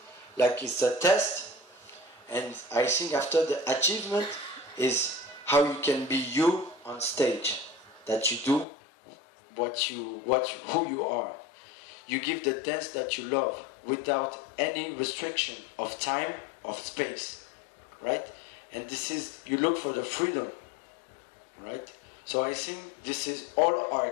like it's a test, and I think after the achievement is how you can be you on stage, that you do who you are. You give the dance that you love without any restriction of time, of space, right? And this is, you look for the freedom, right? So I think this is, all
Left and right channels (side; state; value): right; drops out; at 8.7 s